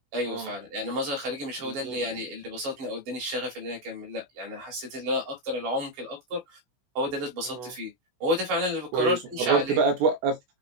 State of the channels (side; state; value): left; late; 16 ms